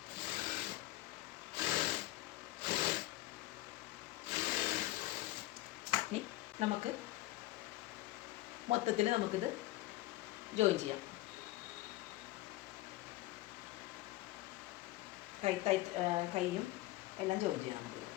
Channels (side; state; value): right; quieter; 17.7 dB